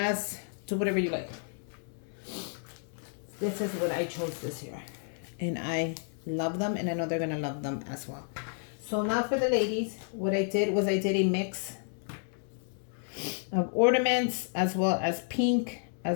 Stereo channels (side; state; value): right; silent; 57 dB below the other